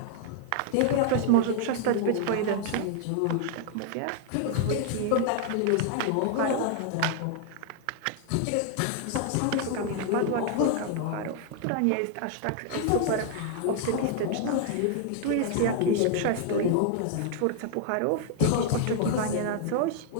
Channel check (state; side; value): different; both; correlation 0.00